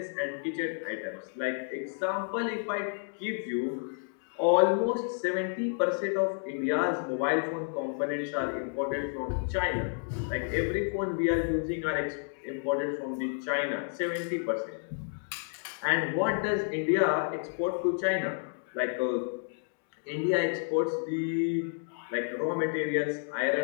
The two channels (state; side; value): silent; right; 57 dB below the other